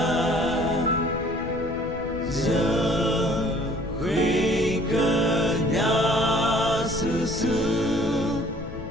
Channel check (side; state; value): left; noise; rumble, 11 dB below the sound